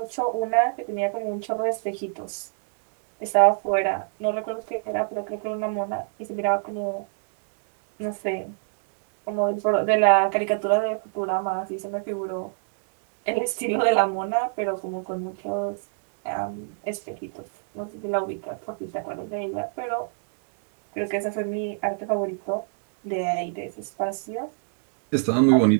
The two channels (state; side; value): silent; left; digital silence